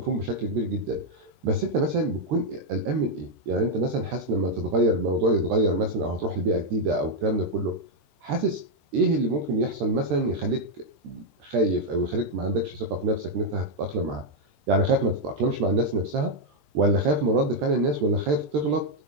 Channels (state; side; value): late; left; 13 ms